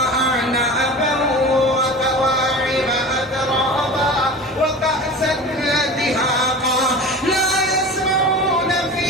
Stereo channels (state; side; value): normal; both; correlation 0.34